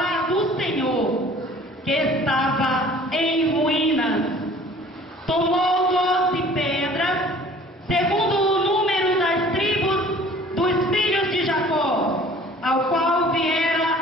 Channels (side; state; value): both; normal; correlation 0.50